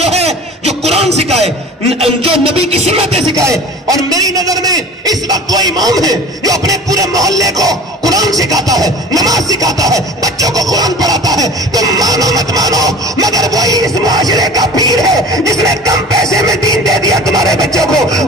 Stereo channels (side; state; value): both; normal; correlation 0.40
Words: ہے جو قرآن سکھائے، جو نبی کی سنتیں سکھائے، اور میری نظر میں اس وقت وہ امام ہے جو اپنے پورے محلے کو قرآن سکھاتا ہے، نماز سکھاتا ہے، بچوں کو قرآن پڑھاتا ہے۔ تم مانو مت مانو، مگر وہی اس معاشرے کا پیر ہے جس نے کم پیسے میں دین دے دیا تمہارے بچوں کو۔